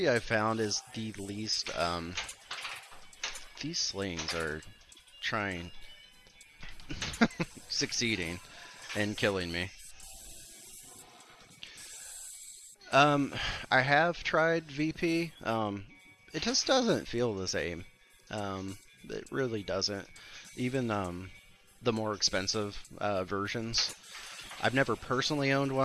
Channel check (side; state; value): both; identical; correlation 1.00